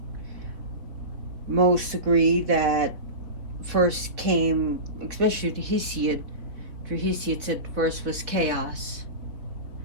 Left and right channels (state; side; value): late; left; 4.3 ms